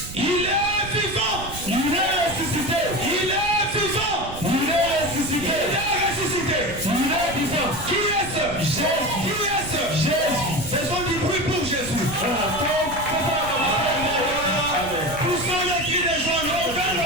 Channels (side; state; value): right; noise; rumble, 11 dB below the sound